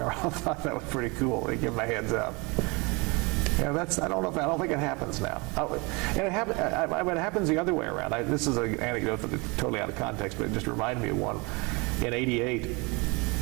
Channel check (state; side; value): quieter; left; 28.0 dB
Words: I thought that was pretty cool. They give him a heads up. I don't think it happens now. And it happens the other way around. This is an anecdote that's totally out of context, but it just reminded me of one in '88.